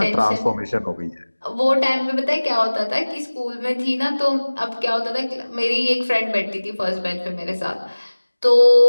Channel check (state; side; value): inverted; both; correlation -1.00